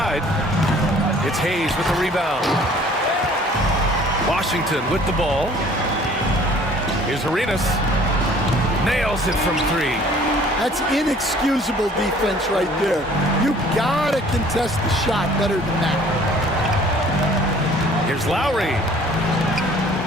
It's Hayes with the rebound. Washington with the ball. Here's Arenas. Nails it from 3. That's inexcusable defense right there. You gotta contest the shot better than that. Here's Lowry.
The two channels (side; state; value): both; normal; correlation 0.53